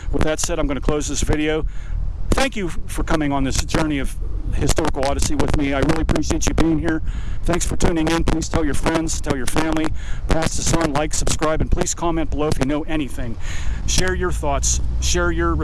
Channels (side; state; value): both; identical; correlation 1.00